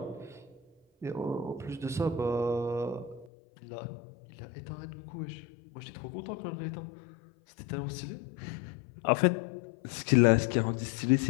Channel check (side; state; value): right; drops out; at 3.3 s